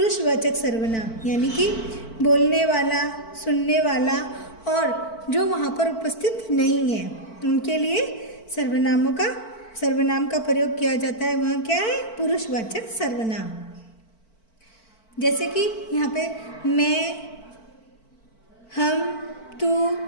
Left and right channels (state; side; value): late; right; 4.5 ms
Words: सर्वनाम। यानी कि बोलने वाला, सुनने वाला और जो वहाँ पर उपस्थित नहीं है उनके लिए सर्वनाम का प्रयोग किया जाता है। वह क्या है? पुरुषवाचक सर्वनाम। जैसे कि यहाँ पे मैं, हम, तू,